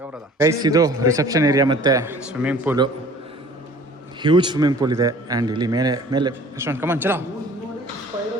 ಗೈಸ್. ಇದು ರಿಸೆಪ್ಷನ್ ಏರಿಯಾ ಮತ್ತು swimming pool, huge swimming pool ಇದೆ. ಆ್ಯಂಡ್ ಇಲ್ಲಿ ಮೇಲೆ ರೆಸ್ಟೋರೆಂಟ್ ಕಮಾನ್ ಚಲೋ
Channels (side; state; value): both; normal; correlation 0.49